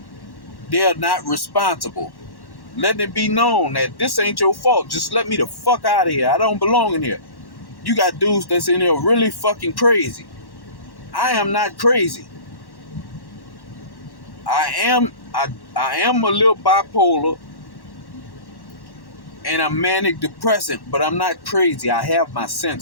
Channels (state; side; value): late; right; 1.1 ms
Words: they're not responsible. Letting it be known that this ain't your fault. Just let me the fuck out of here. I don't belong in here. You got dudes that's in here really fucking crazy. I am not crazy. I am a little bipolar and I'm manic depressant, but I'm not crazy. I have my